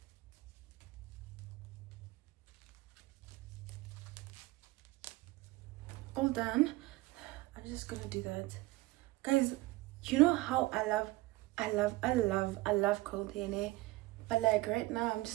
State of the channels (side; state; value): left; quieter; 20.0 dB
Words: All done. I'm just gonna do that, guys. You know how I love curled hair, but like right now I'm